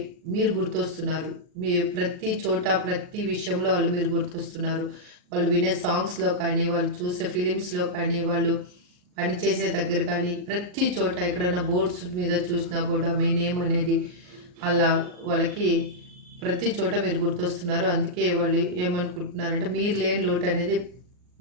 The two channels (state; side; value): late; left; 39 ms